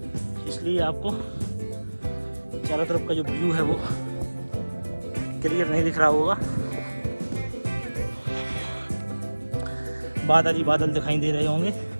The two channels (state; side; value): inverted; both; correlation -1.00